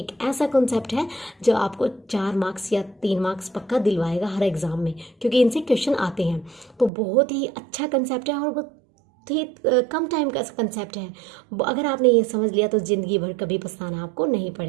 ऐसा कंसेप्ट है जो आपको 4 मार्क्स या 3 मार्क्स पक्का दिलवाएगा हर एग्ज़ाम में, क्योंकि इनसे क्वेश्चन आते हैं। तो बहुत ही अच्छा कंसेप्ट है और बहुत ही कम टाइम का कंसेप्ट है। अगर आपने ये समझ लिया तो ज़िंदगी भर कभी पछताना आपको नहीं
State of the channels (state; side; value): drops out; left; at 6.9 s